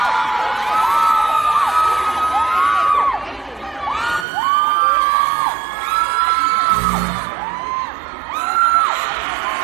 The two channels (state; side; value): drops out; left; at 4.2 s